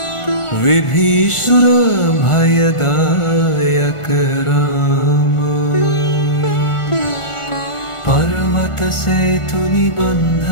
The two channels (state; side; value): late; right; 1.4 ms